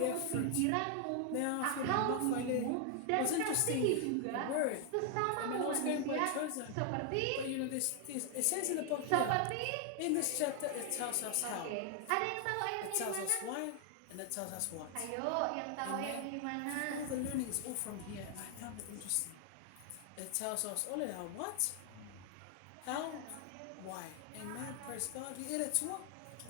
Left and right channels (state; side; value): different; both; correlation 0.00